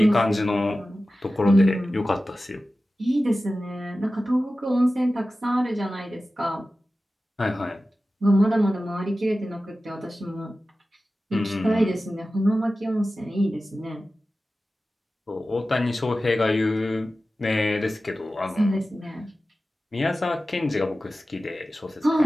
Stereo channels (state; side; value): normal; both; correlation 0.95